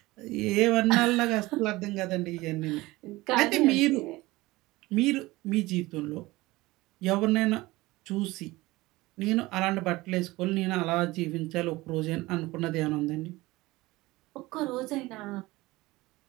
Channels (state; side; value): quieter; left; 20.0 dB